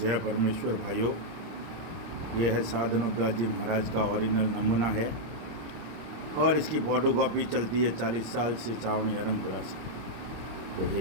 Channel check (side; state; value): left; late; 26 ms